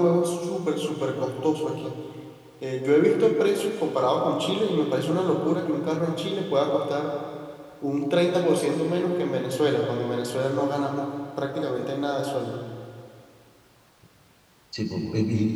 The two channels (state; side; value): identical; both; correlation 1.00